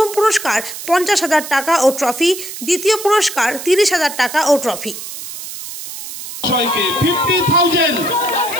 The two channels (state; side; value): noise; right; hiss, 10 dB below the sound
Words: পুরস্কার 50,000 টাকা ও ট্রফি, দ্বিতীয় পুরস্কার 30,000 টাকা ও ট্রফি।